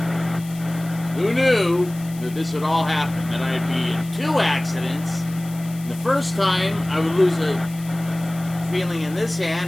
Who knew that this would all happen? That I'd be in 2 accidents. And the first time, I would lose a feeling in this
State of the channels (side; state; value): left; noise; hiss, 19 dB below the sound